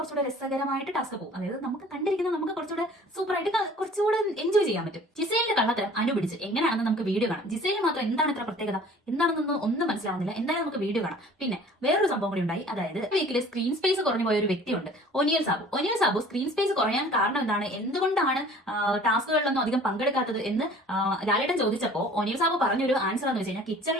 രസകരമായിട്ട് ടാസ്ക് പോകും. അതായത് നമുക്ക് കണ്ടിരിക്കുന്ന നമുക്ക് കുറച്ചുകൂടെ സൂപ്പറായിട്ട് കുറച്ചുകൂടെ എൻജോയ് ചെയ്യാൻ പറ്റും. ജിസേലിന്റെ കള്ളത്തരം അനുപിടിച്ച് എങ്ങനെയാണെന്ന് നമുക്ക് വീഡിയോ കാണാം. ജിസേലിന് മാത്രം എന്താണ് ഇത്ര പ്രത്യേകത, എന്താണെന്നൊന്നും ഒന്നും മനസ്സിലാവുന്നില്ല. എന്തായാലും നമുക്ക് വീഡിയോ കാണാം. പിന്നെ വേറൊരു സംഭവം കൂടി ഉണ്ടായി. അതായത് വീക്കിൽ സ്ക്രീൻ സ്പേസ് കുറഞ്ഞു പോയ ഒരു വ്യക്തിയുണ്ട്, ഒനിയൽ സാബു. സ്ക്രീൻ സ്പേസ് കുറയാൻ കാരണം എന്താണ്, എന്തുകൊണ്ടാണ് ടാസ്കുകളിലൊന്നും അധികം പങ്കെടുക്കാത്തത് എന്ന് ലാലേട്ടൻ ചോദിച്ചപ്പോൾ ഒനിയൽ സാബു പറഞ്ഞൊരു ആൻസർ എന്ന് വെച്ച് കഴിഞ്ഞാൽ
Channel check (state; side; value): normal; both; correlation 0.49